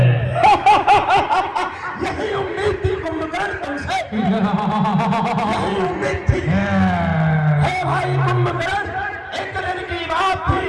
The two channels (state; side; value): identical; both; correlation 1.00